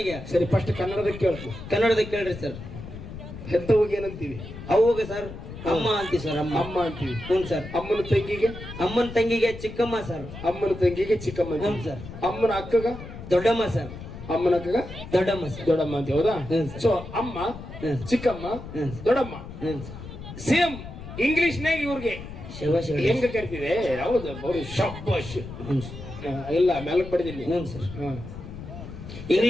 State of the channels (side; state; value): left; noise; rumble, 12 dB below the sound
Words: ಸರಿ ಫಸ್ಟ್ ಕನ್ನಡದಾಗ ಕೇಳ್ತು. ಕನ್ನಡದಾಗ ಕೇಳ್ರಿ ಸರ್. ಹೆತ್ತವಾಗ ಏನಂತೀವಿ? ಅವಾಗ ಸರ್ ಅಮ್ಮ ಅಂತೀವಿ ಸರ್. ಅಮ್ಮ ಅಂತೀವಿ. ಹ್ಞೂ ಸರ್. ಅಮ್ಮನ ತಂಗಿಗೆ ಚಿಕ್ಕಮ್ಮ ಸರ್. ಅಮ್ಮನ ತಂಗಿಗೆ ಚಿಕ್ಕಮ್ಮ. ಹ್ಞೂ ಸರ್. ಅಮ್ಮನ ಅಕ್ಕಗ ದೊಡ್ಡಮ್ಮ ಸರ್. ಅಮ್ಮನ ಅಕ್ಕಗ ದೊಡ್ಡಮ್ಮ ಸರ್. ದೊಡ್ಡಮ್ಮ ಅಂತೀವಿ, ಹೌದಾ? ಸೊ ಅಮ್ಮ, ಚಿಕ್ಕಮ್ಮ, ದೊಡ್ಡಮ್ಮ ಸೇಮ್ ಇಂಗ್ಲಿಷ್ನಾಗ ಇವ್ರಿಗೆ ಹೆಂಗ ಕರಿತೀವಿ? ಹೌದು, ಅವರು ಶಬ್ಬಾಷ್. ಇಲ್ಲ ಮೇಲಕ್ ಪಡೆದಿಲ್ಲ.